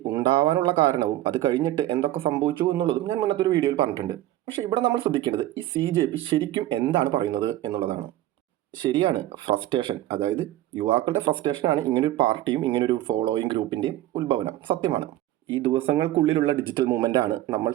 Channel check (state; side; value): quieter; left; 14.5 dB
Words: ഉണ്ടാവാനുള്ള കാരണവും അത് കഴിഞ്ഞിട്ട് എന്തൊക്കെ സംഭവിച്ചു എന്നുള്ളതും ഞാൻ മുന്നത്തെ ഒരു വീഡിയോയിൽ പറഞ്ഞിട്ടുണ്ട്. പക്ഷേ ഇവിടെ നമ്മൾ ശ്രദ്ധിക്കേണ്ടത് ഈ CJP ശരിക്കും എന്താണ് പറയുന്നത് എന്നുള്ളതാണ്. ശരിയാണ്, ഫ്രസ്ട്രേഷൻ, അതായത് യുവാക്കളുടെ ഫ്രസ്ട്രേഷനാണ് ഇങ്ങനൊരു പാർട്ടിയും ഇങ്ങനൊരു ഫോളോയിങ് ഗ്രൂപ്പിൻ്റെയും ഉത്ഭവനം. സത്യമാണ്. ഈ ദിവസങ്ങൾക്കുള്ളിലുള്ള ഡിജിറ്റൽ മൂവ്മെൻ്റ് ആണ് നമ്മൾ